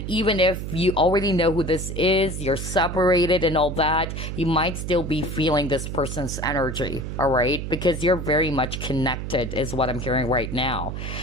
even if you already know who this is, you're separated and all that, you might still be feeling this person's energy, all right? Because you're very much connected is what I'm hearing right now.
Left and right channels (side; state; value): right; noise; hum, 6 dB below the sound